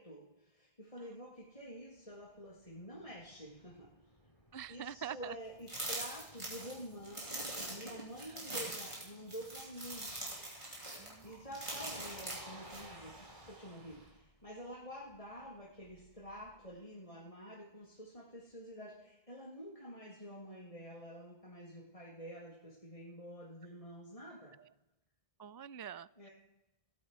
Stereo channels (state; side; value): late; right; 1.6 ms